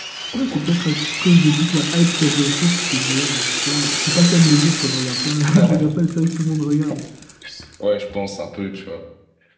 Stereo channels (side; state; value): both; identical; correlation 1.00